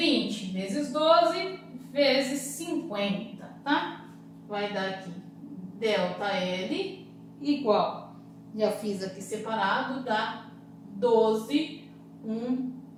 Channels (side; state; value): both; identical; correlation 1.00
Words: vezes 12 vezes 50, tá? Vai dar aqui delta L igual, já fiz aqui separado, dá 12, 1,